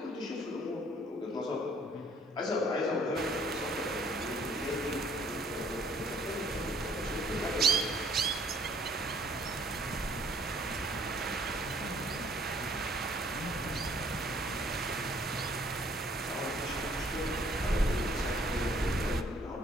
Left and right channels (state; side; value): normal; both; correlation 0.61